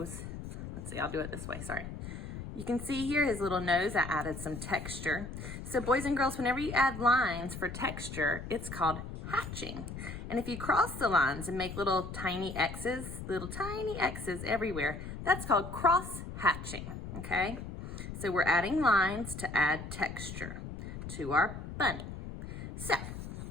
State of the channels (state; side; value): noise; left; rumble, 9 dB below the sound